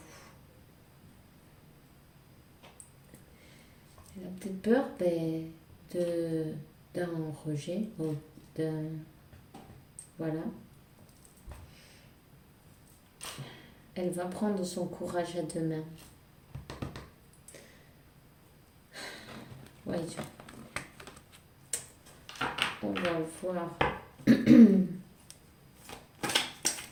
Elle a peut-être peur d'un rejet, ou d'un... Voilà. Elle va prendre son courage à deux mains. Voyons. On va voir.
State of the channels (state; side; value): identical; both; correlation 1.00